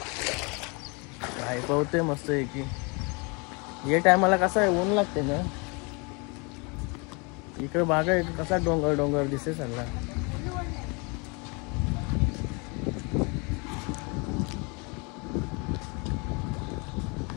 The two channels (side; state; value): right; quieter; 30.8 dB